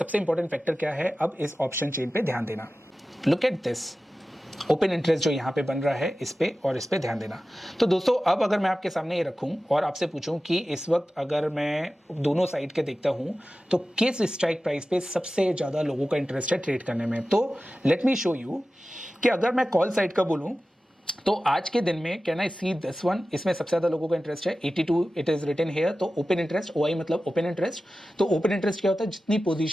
इंपॉर्टेंट फैक्टर क्या है, अब इस ऑप्शन चेन पे ध्यान देना। Look at this open interest जो यहाँ पे बन रहा है, इस पे और इस पे ध्यान देना। तो दोस्तों अब अगर मैं आपके सामने ये रखूं और आपसे पूछूं कि इस वक्त अगर मैं दोनों साइड के देखता हूं तो किस स्ट्राइक प्राइस पे सबसे ज्यादा लोगों का इंटरेस्ट है ट्रेड करने में, तो लेट मी शो यू कि अगर मैं कॉल साइड का बोलूं तो आज के दिन में can I see this one, इसमें सबसे ज्यादा लोगों का इंटरेस्ट है 82, इट इज रिटन हियर। तो ओपन इंटरेस्ट, ओआई मतलब ओपन इंटरेस्ट। तो ओपन इंटरेस्ट क्या होता है, जितनी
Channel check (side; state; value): both; normal; correlation 0.95